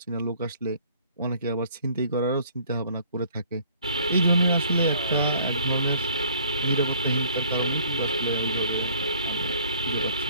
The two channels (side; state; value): both; inverted; correlation -0.57